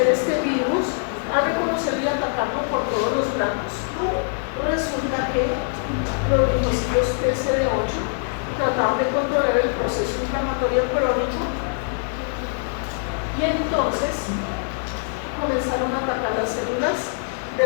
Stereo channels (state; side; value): silent; right; 63 dB below the other